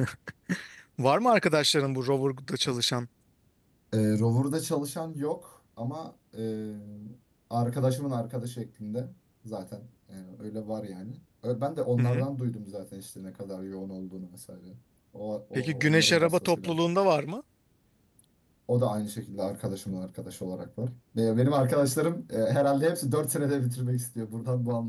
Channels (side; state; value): both; identical; correlation 1.00